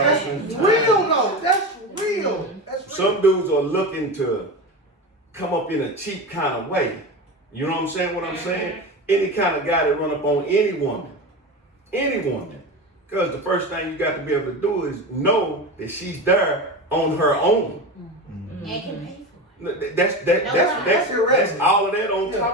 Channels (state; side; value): normal; both; correlation 0.24